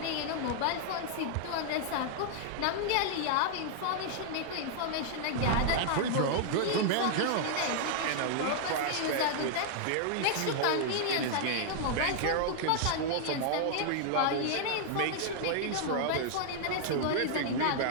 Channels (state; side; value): different; both; correlation -0.01